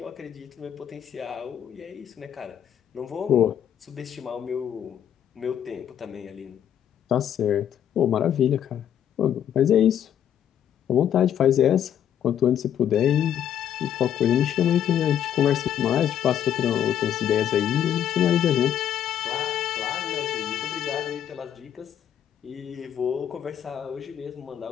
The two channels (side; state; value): right; quieter; 9.8 dB